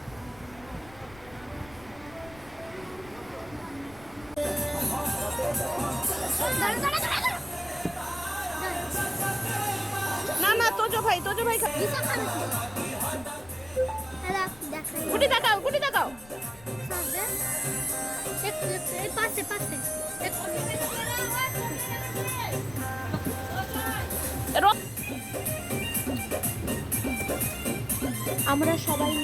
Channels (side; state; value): left; noise; rumble, 21 dB below the sound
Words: না না তোজো ভাই গুটি দেখাও, গুটি দেখাও। পাশে পাশে আমরা সবাই